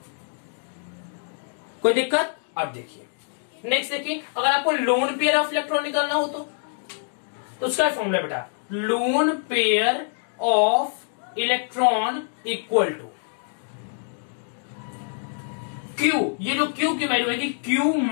कोई दिक्कत। अब देखिए नेक्स्ट, देखिए अगर आपको लोन पेयर ऑफ इलेक्ट्रॉन निकालना हो तो उसका फॉर्मूला बेटा, lone pair of electron equal to Q, ये जो क्यू की वैल्यू है Q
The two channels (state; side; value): silent; right; digital silence